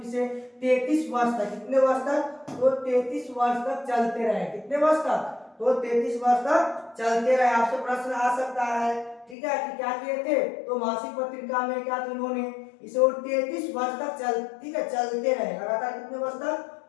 33 वर्ष तक, कितने वर्ष तक, तो 33 वर्ष तक चलते रहे, कितने वर्ष तक, तो 33 वर्ष तक चलते रहे। आपसे प्रश्न आ सकता है, ठीक है, कि क्या किए थे, तो मासिक पत्रिका में क्या था, उन्होंने इसे और 33 वर्ष तक चल, ठीक है, चलते रहे लगातार, कितने वर्ष तक,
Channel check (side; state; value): right; drops out; at 9.3 s